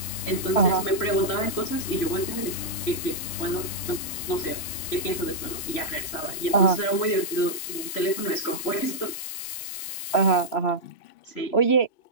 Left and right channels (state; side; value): late; right; 3.0 ms